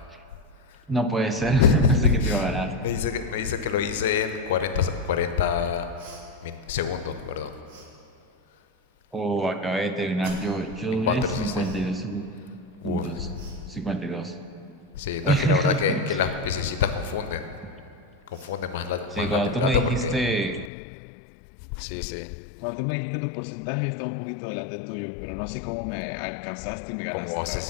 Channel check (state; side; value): drops out; right; at 20.7 s